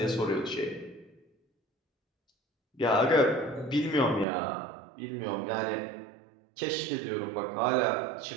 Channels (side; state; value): left; drops out; at 4.2 s